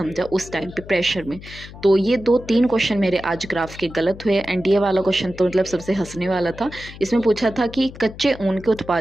उस टाइम पे प्रेशर में। तो ये 2-3 क्वेश्चन मेरे आज ग्राफ के गलत हुए। एंड ये वाला क्वेश्चन तो मतलब सबसे हंसने वाला था। इसमें पूछा था कि कच्चे ऊन के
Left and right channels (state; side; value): noise; left; hum, 16 dB below the sound